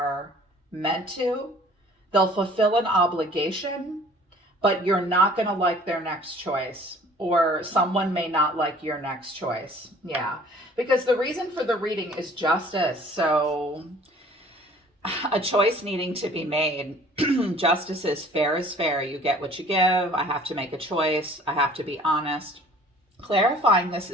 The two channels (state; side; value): normal; both; correlation 0.52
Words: meant to. They'll fulfill an obligation, but you're not going to like their next choice, or someone may not like your next choice. Yeah, because the reason for the reading is justice. So a choice needing to be made. Justice is fair. You get what you give. I have to make a choice. I have to be honest. Clarifying this